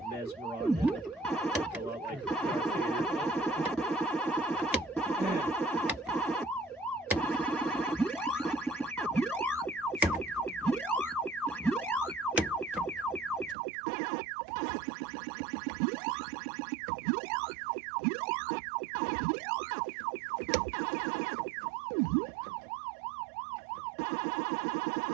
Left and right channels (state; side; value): drops out; left; at 13.6 s